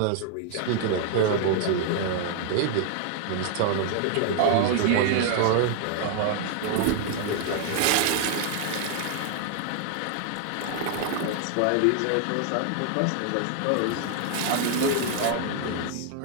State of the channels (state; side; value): different; both; correlation 0.00